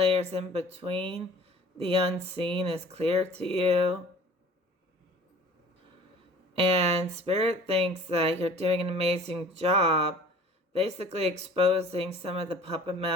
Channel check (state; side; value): normal; both; correlation 0.47